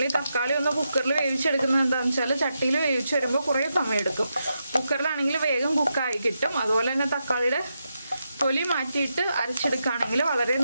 ഈ തക്കാളി ഒന്ന് കുക്കറിൽ വേവിച്ചെടുക്കുന്നത് എന്താണെന്ന് വെച്ചാൽ ചട്ടിയിൽ വേവിച്ച് വരുമ്പോൾ കുറേ സമയം എടുക്കും. കുക്കറിലാണെങ്കിൽ വേഗം കുക്കായി കിട്ടും. അതുപോലെ തന്നെ തക്കാളിയുടെ തൊലി മാറ്റിയിട്ട് അരച്ചെടുക്കുകയാണെങ്കിൽ വളരെ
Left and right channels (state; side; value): inverted; both; correlation -0.85